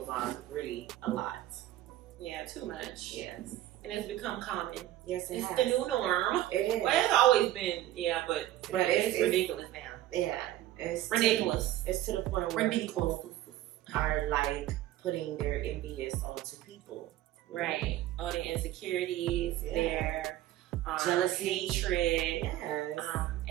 on really a lot. Yeah, too much. Yes. And it's become common. Yes, it it's has. the new norm. It is. Well, it's always been, but it's ridiculous now. Yeah. It's ridiculous. It's to the point where people are like putting their envious onto people. Right. All their insecurities, their jealousy, hatred, yes.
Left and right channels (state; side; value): quieter; left; 14.0 dB